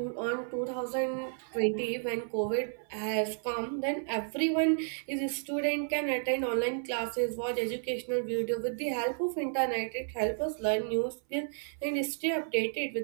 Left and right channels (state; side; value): silent; left; 55 dB below the other